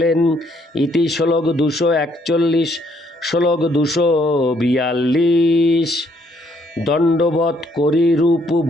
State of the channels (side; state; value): both; normal; correlation 0.68